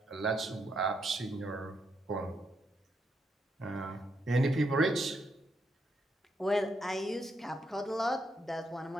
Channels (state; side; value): normal; both; correlation 0.79